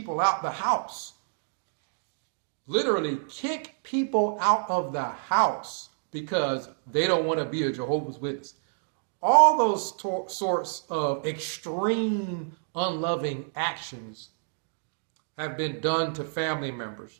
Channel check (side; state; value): left; silent; digital silence